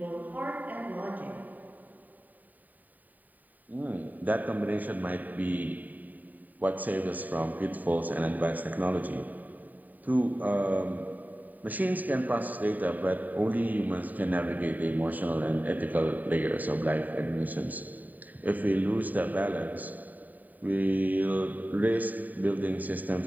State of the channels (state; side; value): late; left; 0.083 ms